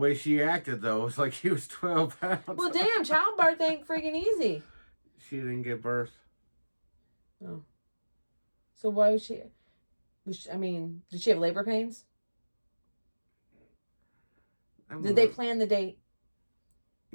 she acted though, was like he was 12 pounds. Well, damn, childbirth ain't freaking easy. She didn't give birth. Oh. So why was she, I mean, did she have labor pains? Did they plan the date?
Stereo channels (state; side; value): inverted; both; correlation -1.00